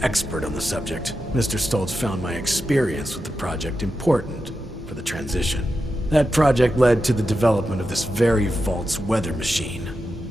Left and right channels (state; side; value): normal; both; correlation 0.89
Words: expert on the subject, Mr. Stoltz found my experience with the project important for the transition. That project led to the development of this very Vault's weather machine,